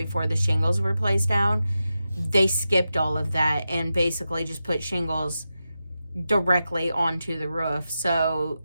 the shingles were placed down, they skipped all of that and basically just put shingles directly onto the roof. So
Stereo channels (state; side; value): inverted; both; correlation -0.90